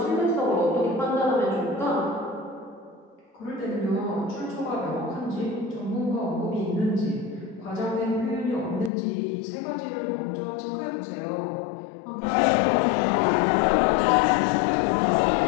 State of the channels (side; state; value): right; drops out; at 8.9 s